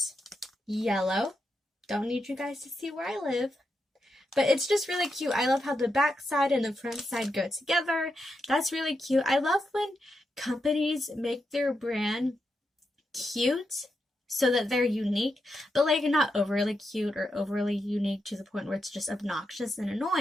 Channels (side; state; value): both; normal; correlation 0.85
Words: yellow. Don't need you guys to see where I live. But it's just really cute. I love how the back side and the front side go together. That's really cute. I love when companies make their brand cute so that they're unique, but like not overly cute or overly unique to the point where it's just obnoxious and